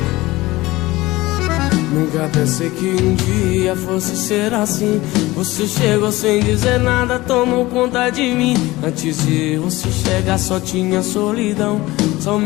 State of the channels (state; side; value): quieter; right; 19.3 dB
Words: Nunca pensei que um dia fosse ser assim. Você chegou sem dizer nada, tomou conta de mim. Antes de você chegar só tinha solidão,